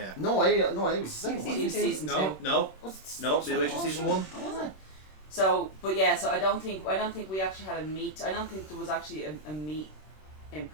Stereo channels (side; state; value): right; late; 26 ms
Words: No, I was the second one. Season No, two. no, Was no. Midway through season one. Oh, was it? So, but yeah, so I don't think we actually had a meet. I don't think there was actually a meet in